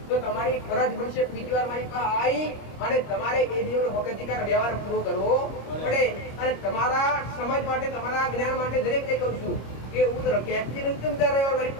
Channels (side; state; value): right; late; 26 ms